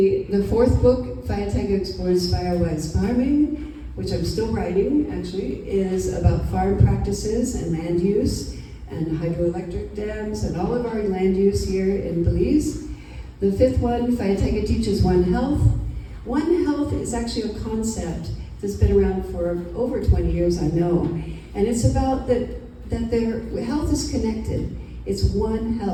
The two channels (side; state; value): both; identical; correlation 1.00